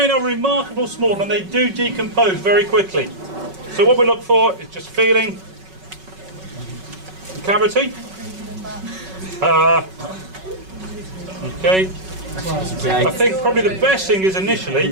are remarkably small and they do decompose very quickly. So what we look for is just feeling the cavity. Okay. I think probably the best thing is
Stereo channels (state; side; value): late; left; 5.3 ms